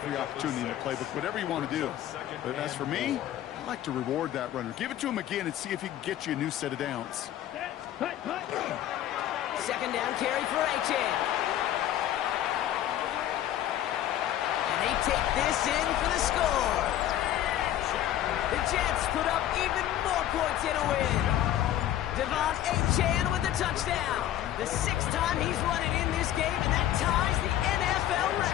opportunity in the playbook, whatever you want to do. But as for me, I like to reward that runner. Give it to him again and see if he can get you a new set of downs. 2nd down carry for Achane. And they take this in for the score. The Jets put up even more points in a win. Achane with the touchdown. The 6th time he's run it in this game, and that ties the NFL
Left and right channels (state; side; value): quieter; right; 12.3 dB